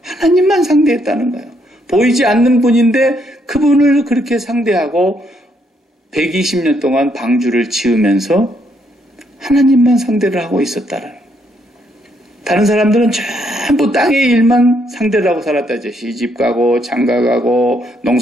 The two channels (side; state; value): both; normal; correlation 0.73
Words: 하나님만 상대했다는 거예요. 보이지 않는 분인데 그분을 그렇게 상대하고 120년 동안 방주를 지으면서 하나님만 상대를 하고 있었다는 거예요. 다른 사람들은 전부 땅의 일만 상대를 하고 살았다죠. 시집 가고 장가 가고